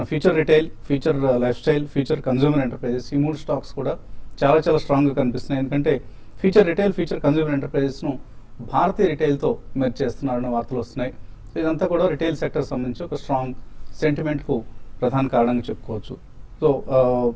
future retail, future life style, future consumer enterprises, ఈ 3 స్టాక్స్ కూడా చాలా స్ట్రాంగ్గా కనిపిస్తున్నాయి. ఎందుకంటే ఫ్యూచర్ రిటైల్, ఫ్యూచర్ కన్జ్యూమర్ ఎంటర్ప్రైజెస్ను భారతీయ రిటైల్తో మెర్జ్ చేస్తున్నారన్న వార్తలు వస్తున్నాయి. సో ఇదంతా కూడా రిటైల్ సెక్టర్ సంబంధించి ఒక స్ట్రాంగ్ సెంటిమెంట్కు ప్రధాన కారణంగా చెప్పుకోవచ్చు. సో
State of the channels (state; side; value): identical; both; correlation 1.00